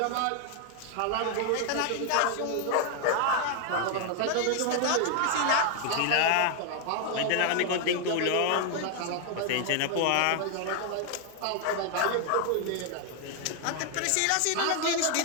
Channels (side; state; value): both; different; correlation 0.00